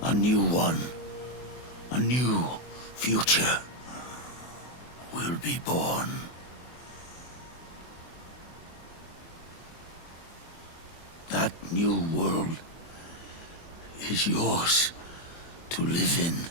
a new one, a new future will be born. That new world is yours to live in,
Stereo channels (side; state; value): right; late; 24 ms